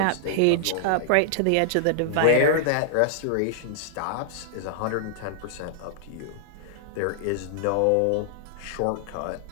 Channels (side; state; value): both; different; correlation -0.01